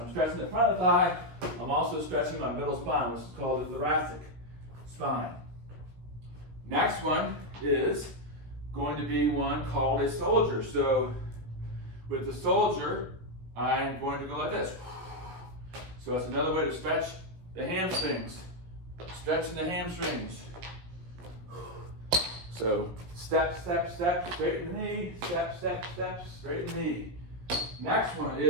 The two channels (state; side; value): late; left; 17 ms